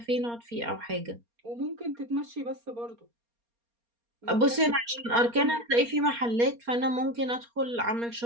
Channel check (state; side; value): late; left; 4.3 ms